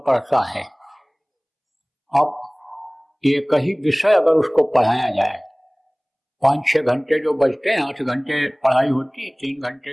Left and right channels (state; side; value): identical; both; correlation 1.00